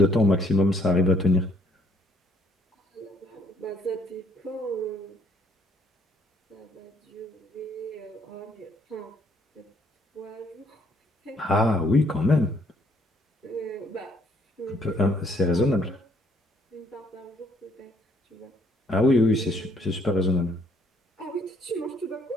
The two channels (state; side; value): normal; both; correlation 0.66